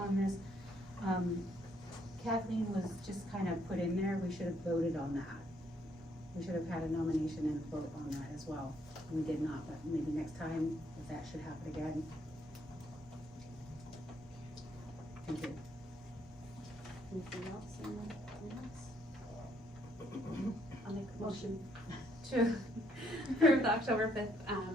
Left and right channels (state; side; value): normal; both; correlation 0.70